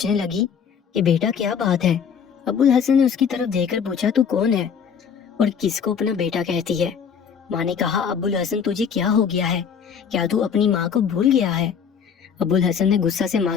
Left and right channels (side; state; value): right; quieter; 7.1 dB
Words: لگی کہ بیٹا کیا بات ہے؟ ابو الحسن نے اس کی طرف دیکھ کر پوچھا، تو کون ہے اور کس کو اپنا بیٹا کہتی ہے؟ ماں نے کہا، ابو الحسن تجھے کیا ہو گیا ہے؟ کیا تو اپنی ماں کو بھول گیا ہے؟ ابو الحسن نے غصہ سے